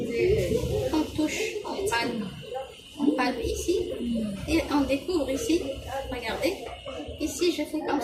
On touche, on palpe ici et on découvre ici. Regardez, ici je fais comme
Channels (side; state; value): both; identical; correlation 1.00